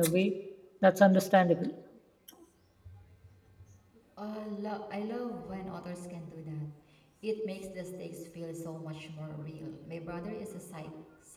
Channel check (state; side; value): identical; both; correlation 1.00